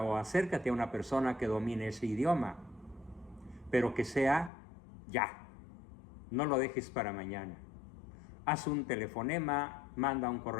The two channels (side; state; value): right; drops out; at 4.5 s